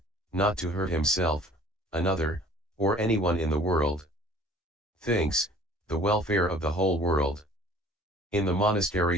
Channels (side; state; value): both; normal; correlation 0.51